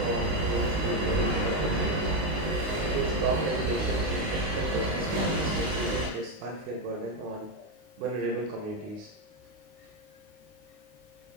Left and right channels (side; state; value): left; late; 19 ms